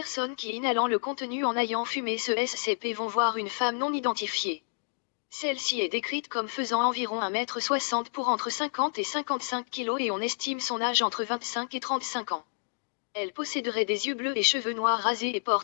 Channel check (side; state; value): right; silent; digital silence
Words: qui inhalant le contenu en ayant fumé ce SCP vont voir une femme non identifiée. Celle-ci est décrite comme faisant environ 1,60 m pour entre 50 et 55 kg et on estime son âge entre 25 et 35 ans. Elle posséderait des yeux bleus et cheveux noirs rasés et